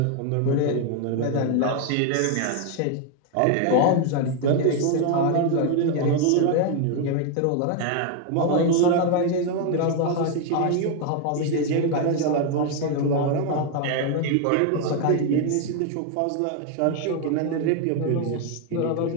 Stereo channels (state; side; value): different; both; correlation 0.01